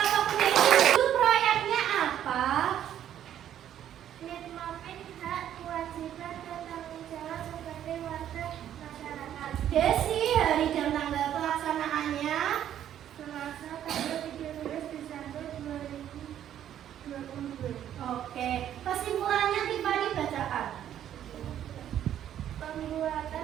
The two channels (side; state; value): left; quieter; 10.7 dB